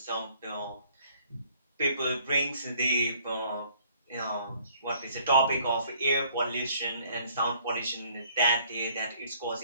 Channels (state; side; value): inverted; both; correlation -0.60